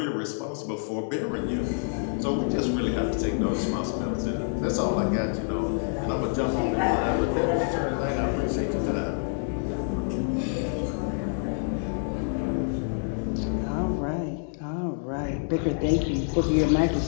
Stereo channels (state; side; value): silent; right; 60 dB below the other